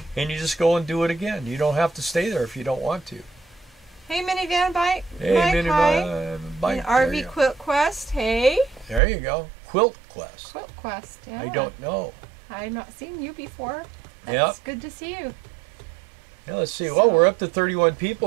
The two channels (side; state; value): left; drops out; at 9.0 s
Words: and you just go and do it again. You don't have to stay there if you don't want to. Hey, Minivan Bike. Hey, Minivan Bike. RV Quilt Quest. Hey. There you go. Quilt Quest. Quilt Quest. Yeah. I don't know. I've not seen you before. That's good to see you. Yeah, let's see. Well, we're up to 31